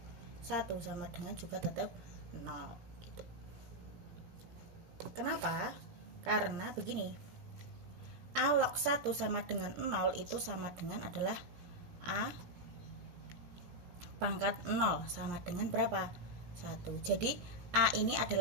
1 sama dengan juga tetap 0 gitu. Kenapa? Karena begini, A log 1 sama dengan 0 itu sama dengan adalah A pangkat 0 sama dengan berapa? 1. Jadi A ini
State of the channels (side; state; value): left; late; 17 ms